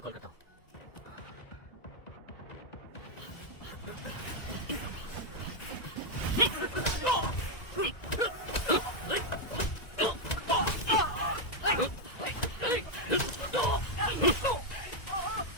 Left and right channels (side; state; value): right; late; 1.9 ms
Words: कॉल करता हूँ।